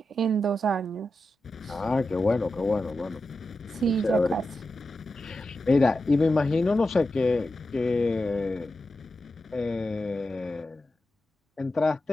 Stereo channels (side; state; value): both; normal; correlation 0.91